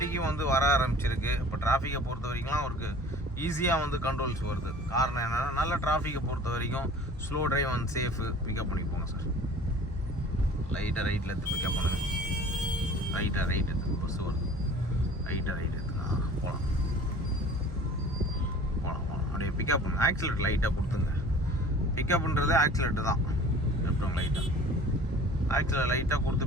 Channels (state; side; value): normal; both; correlation 0.45